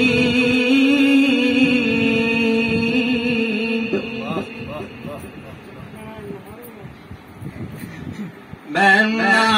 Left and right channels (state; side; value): identical; both; correlation 1.00